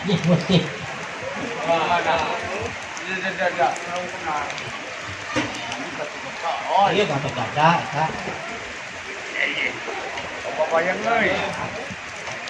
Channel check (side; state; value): both; identical; correlation 1.00